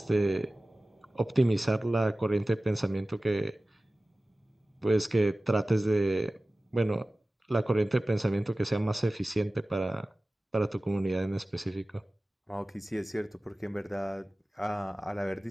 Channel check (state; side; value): normal; both; correlation 0.97